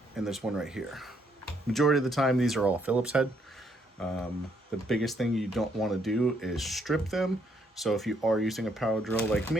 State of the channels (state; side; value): normal; both; correlation 0.71